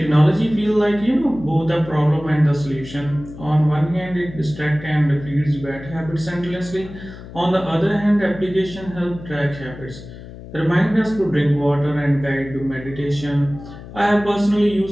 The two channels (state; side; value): noise; left; hum, 15 dB below the sound